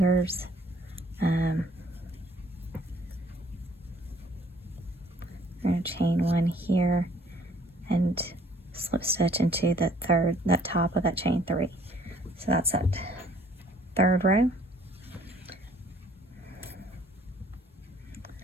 I'm going to chain 1 here and slip stitch into that top of that chain 3. So that's that 3rd row.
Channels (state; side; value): normal; both; correlation 0.60